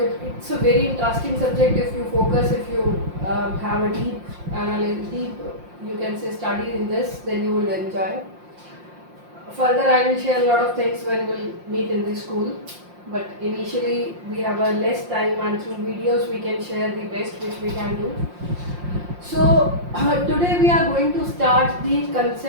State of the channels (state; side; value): late; left; 5.7 ms